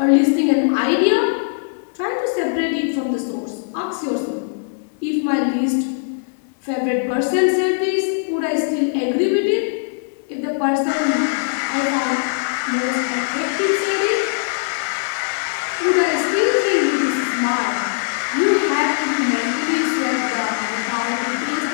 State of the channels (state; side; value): silent; right; digital silence